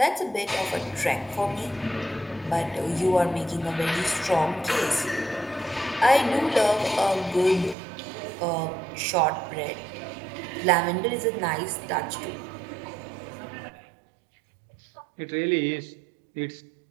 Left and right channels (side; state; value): left; drops out; at 7.8 s